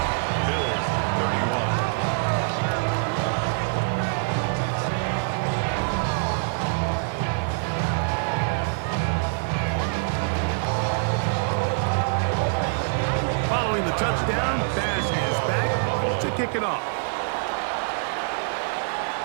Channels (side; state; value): left; silent; 62 dB below the other